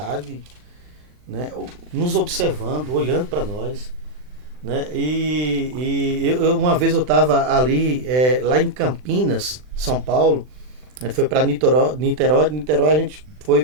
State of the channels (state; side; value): late; left; 39 ms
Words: né, nos observando, olhando para nós. Né? Uma vez eu estava ali, lá em Campinas, São Paulo, né, foi para Niterói, de Niterói a gente foi